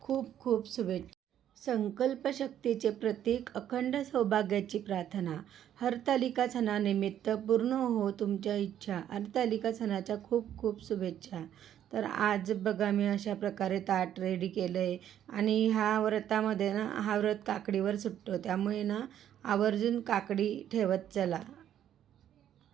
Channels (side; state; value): left; quieter; 10.6 dB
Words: खूप खूप शुभेच्छा. संकल्पशक्तीचे प्रतीक, अखंड सौभाग्याची प्रार्थना. हरतालिका सणानिमित्त पूर्ण हो तुमच्या इच्छा. हरतालिका सणाच्या खूप खूप शुभेच्छा. तर आज बघा मी अशा प्रकारे ताट रेडी केलं आहे आणि ह्या व्रतामध्ये ना हा व्रत काकडीवर सुटतो, त्यामुळे ना आवर्जून काकडी ठेवत चला